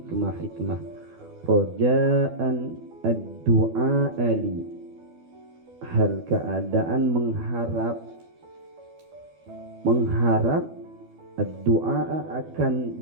Roja'an ad-du'a ali, hal keadaan mengharap ad-du'a, akan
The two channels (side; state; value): left; late; 12 ms